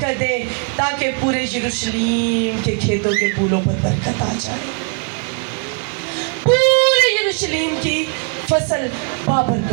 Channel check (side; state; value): left; quieter; 38.1 dB